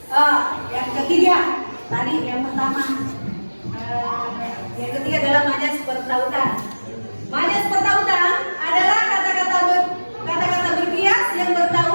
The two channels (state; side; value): inverted; both; correlation -1.00